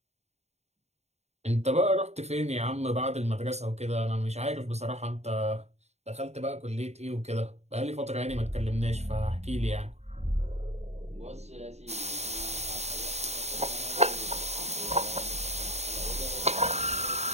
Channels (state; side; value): late; left; 0.32 ms